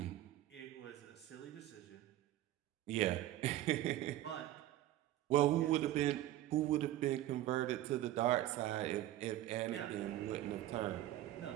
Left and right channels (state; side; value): quieter; left; 14.3 dB